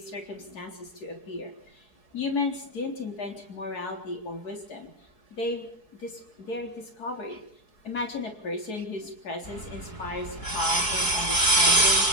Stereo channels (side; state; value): right; late; 4.7 ms